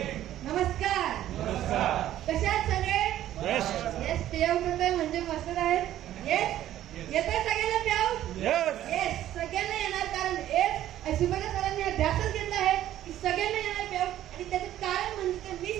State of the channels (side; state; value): left; quieter; 12.7 dB